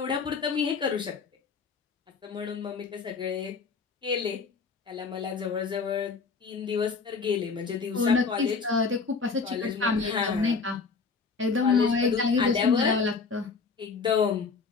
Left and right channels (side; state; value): right; quieter; 4.9 dB